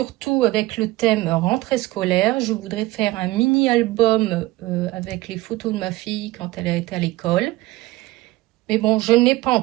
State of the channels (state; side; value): quieter; left; 18.6 dB